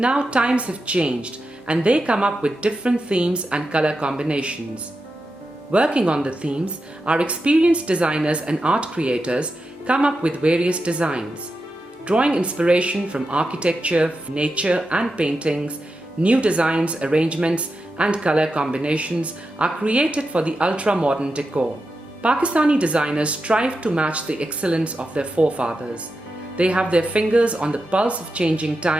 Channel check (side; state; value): both; normal; correlation 0.89